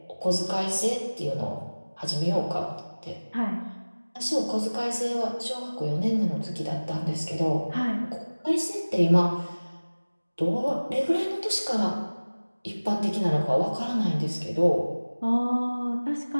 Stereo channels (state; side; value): inverted; both; correlation -1.00